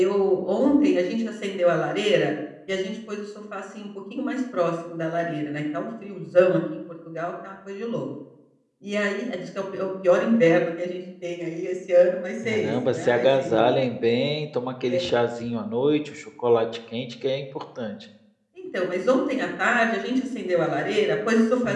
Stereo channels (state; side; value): identical; both; correlation 1.00